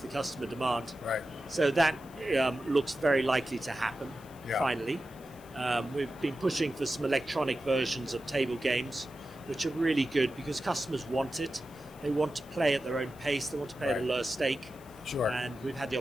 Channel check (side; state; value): left; noise; hiss, 24 dB below the sound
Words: customer demand. Right. So that looks very likely to happen, finally. We've been pushing for some electronic versions of table games, which are really good because customers want it. They want to play at their own pace. They want to play at a lower stake. Sure. And we've had the